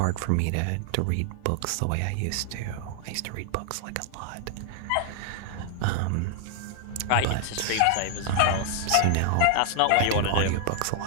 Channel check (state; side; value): different; both; correlation 0.00